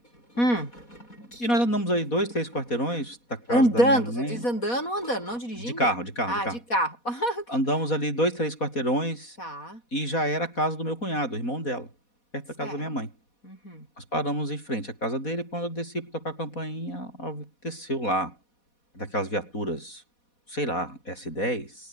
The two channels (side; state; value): right; late; 4.1 ms